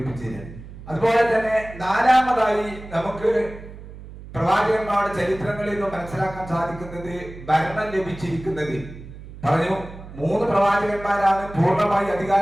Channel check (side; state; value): right; noise; hum, 15 dB below the sound